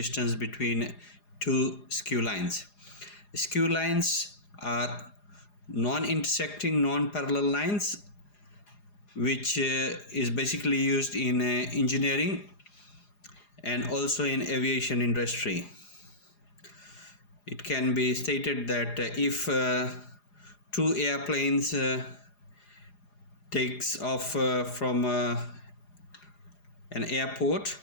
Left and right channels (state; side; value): late; right; 4.9 ms